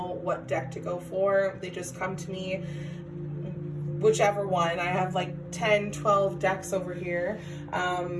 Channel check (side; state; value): both; identical; correlation 1.00